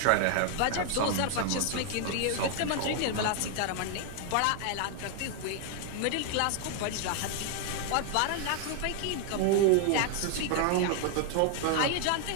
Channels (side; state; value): both; different; correlation 0.00